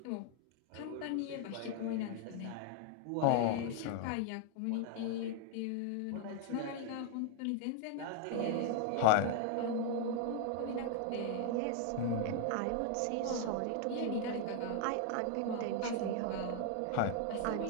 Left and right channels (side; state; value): both; different; correlation 0.00